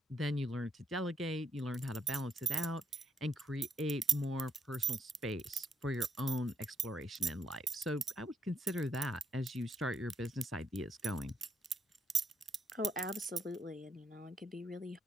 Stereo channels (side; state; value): both; normal; correlation 0.74